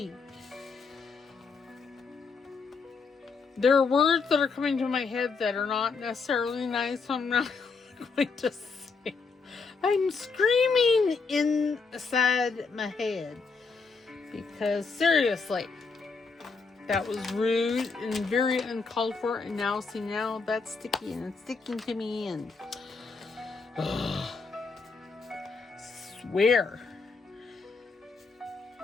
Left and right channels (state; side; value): quieter; right; 4.7 dB